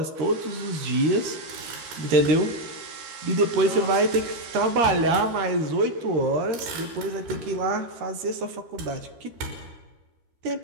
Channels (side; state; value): left; late; 13 ms